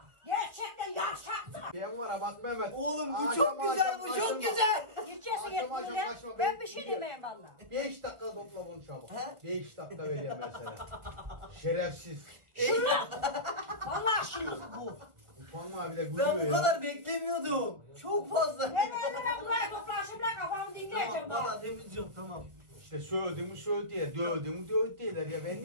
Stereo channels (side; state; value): left; late; 1.3 ms